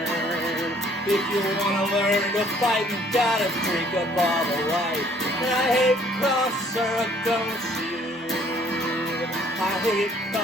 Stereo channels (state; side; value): normal; both; correlation 0.60